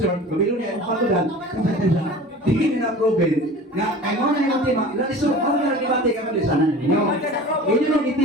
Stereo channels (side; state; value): both; normal; correlation 0.39